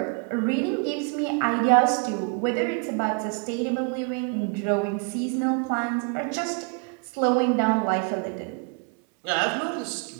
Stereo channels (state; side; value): quieter; left; 34.4 dB